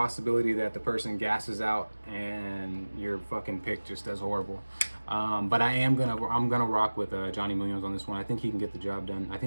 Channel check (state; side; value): inverted; both; correlation -1.00